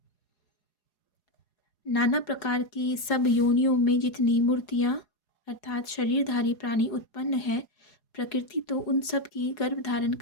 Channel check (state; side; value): late; right; 4.8 ms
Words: नाना प्रकार की सब योनियों में जितनी मूर्तियाँ अर्थात शरीरधारी प्राणी उत्पन्न है, प्रकृति तो उन सब की गर्भ धारण